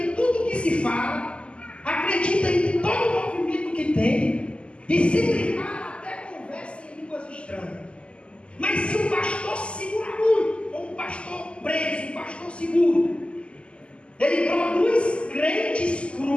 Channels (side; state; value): right; late; 0.054 ms